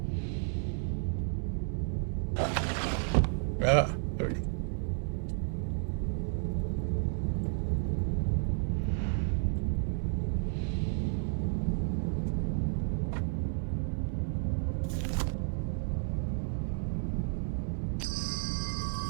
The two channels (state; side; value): silent; left; 56 dB below the other